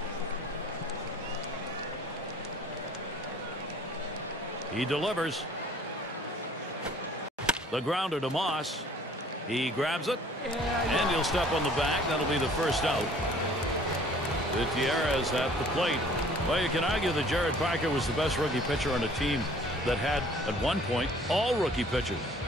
He delivers. The grounder to Moss. He grabs it, and he'll step on the bag. That'll be the first out. Gutierrez at the plate. Well, you can argue that Jared Parker was the best rookie pitcher on a team that had, at one point, all rookie pitchers.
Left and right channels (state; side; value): normal; both; correlation 0.53